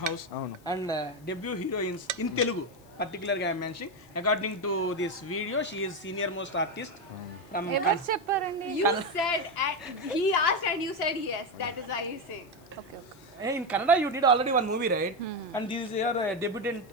house and debut heroines in Telugu. పర్టికులర్గా I'm mentioning according to this video she is senior most artist from. ఎవరు చెప్పారండి? You said, he asked and you said yes. That is why he said. Okay okay. In Kannada you did already one movie, right? And this is your debutant.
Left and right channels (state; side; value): noise; left; hiss, 28 dB below the sound